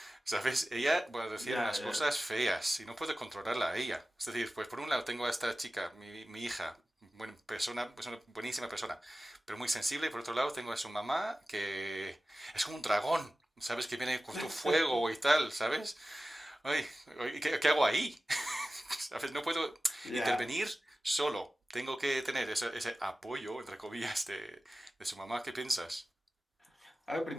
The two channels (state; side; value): normal; both; correlation 0.96